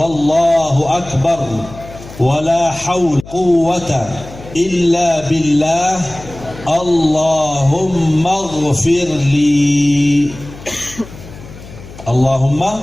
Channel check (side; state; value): left; noise; hum, 17 dB below the sound